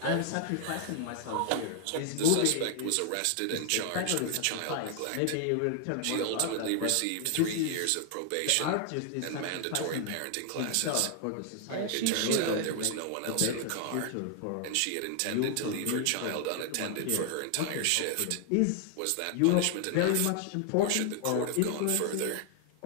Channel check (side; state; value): both; different; correlation 0.00